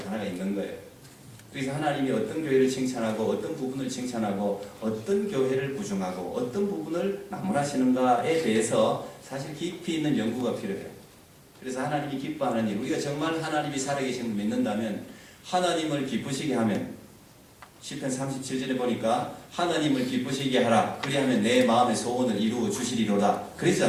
하나가 있는 거예요. 그래서 하나님이 어떤 교회를 칭찬하고 어떤 부분을 칭찬하고 어떤 교회를 부정하고 어떤 부분을 나무라시는가에 대해서 사실 깊이 있는 연구가 필요해요. 그래서 하나님이 기뻐하는 일, 우리가 정말 하나님이 살아계심을 믿는다면 하나님을 기쁘시게 하면 시편 37절에 보니까 하나님을 기쁘시게 하라 그리하면 내 마음의 소원을 이루어 주시리로다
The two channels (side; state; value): both; identical; correlation 1.00